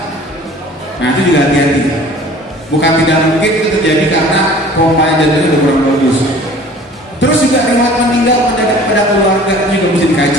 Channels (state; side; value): normal; both; correlation 0.47